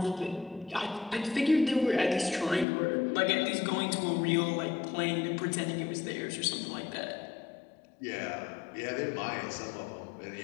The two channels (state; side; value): drops out; right; at 2.7 s